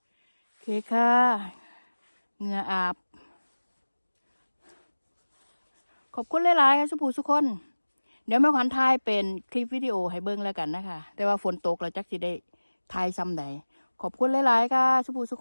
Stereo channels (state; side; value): inverted; both; correlation -1.00